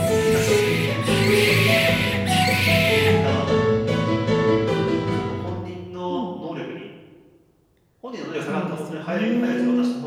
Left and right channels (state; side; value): identical; both; correlation 1.00